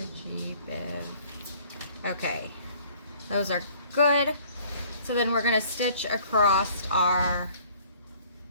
Okay, those are good. So then we're going to stitch across our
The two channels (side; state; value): both; inverted; correlation -0.55